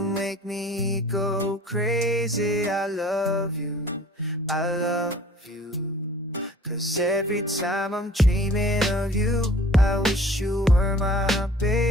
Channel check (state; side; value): normal; both; correlation 0.50